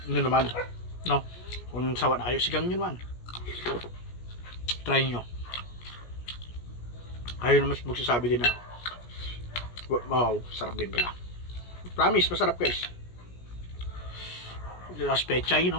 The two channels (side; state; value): right; late; 17 ms